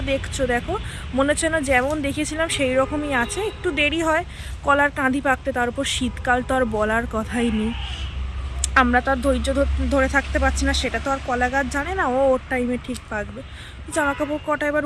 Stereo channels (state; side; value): identical; both; correlation 1.00